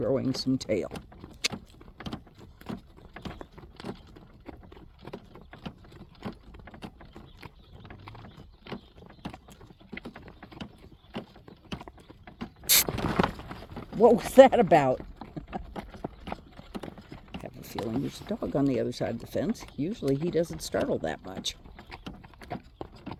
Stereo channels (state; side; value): identical; both; correlation 1.00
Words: some tail. What was that about? I have a feeling there's a dog on the other side of the fence. Usually he doesn't startle that much.